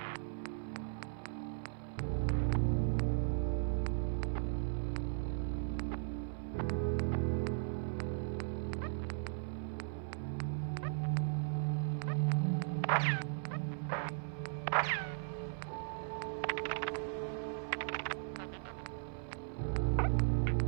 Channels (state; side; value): silent; left; 53 dB below the other